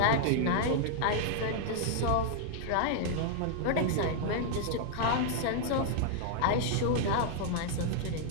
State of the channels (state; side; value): different; both; correlation -0.01